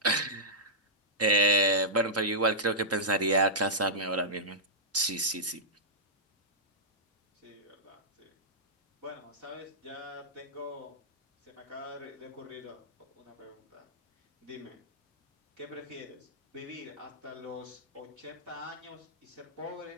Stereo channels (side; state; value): both; normal; correlation -0.15